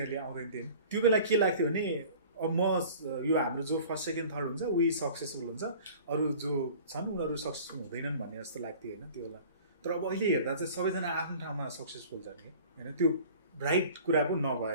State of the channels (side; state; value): both; inverted; correlation -0.45